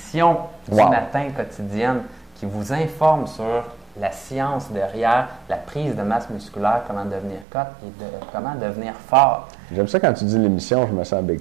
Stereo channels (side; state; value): left; drops out; at 7.5 s